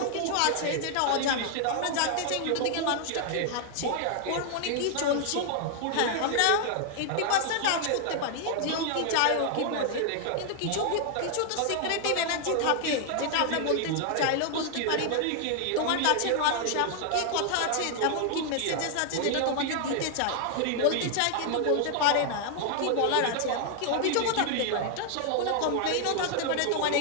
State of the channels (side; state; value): both; different; correlation 0.00